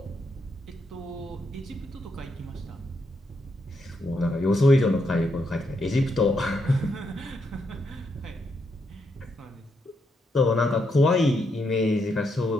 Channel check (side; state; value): both; normal; correlation 0.79